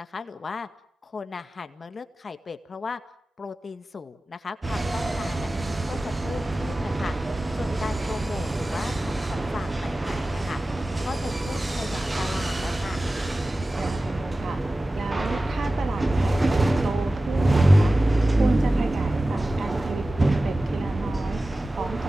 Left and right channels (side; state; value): both; normal; correlation 0.96